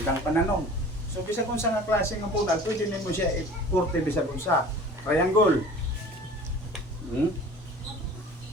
pananong. So, bisa kung sa nga klase ng bunal, pwede nimo siya i-kurte bisa kung sa triangle.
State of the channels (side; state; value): both; normal; correlation 0.43